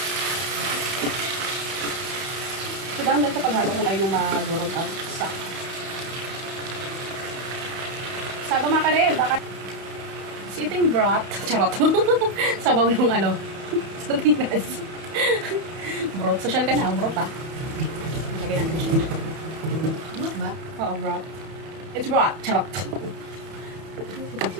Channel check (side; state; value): left; late; 31 ms